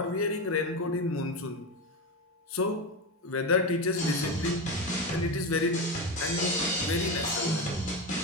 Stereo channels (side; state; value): both; normal; correlation 0.17